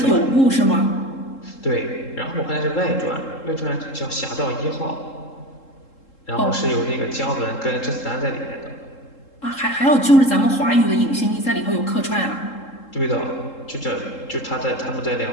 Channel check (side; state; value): right; late; 3.7 ms